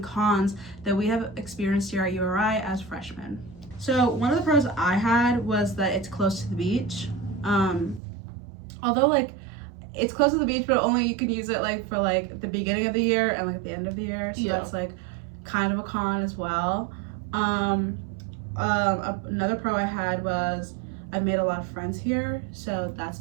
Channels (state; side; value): drops out; left; at 8.0 s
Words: cons that we have experienced here at URI as freshmen. So one of the pros I had was that it's close to the beach. Although it's close to the beach, but only you can use it for the beginning of the year and at the end of the year. So that's kind of a con as well. Another pro I had was I've made a lot of friends here, so that's